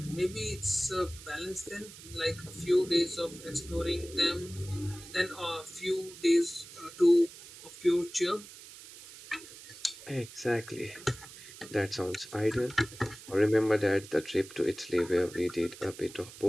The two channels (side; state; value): right; noise; hiss, 16 dB below the sound